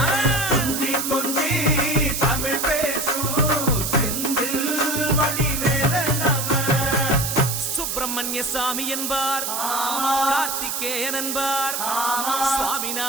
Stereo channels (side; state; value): right; noise; hiss, 2 dB below the sound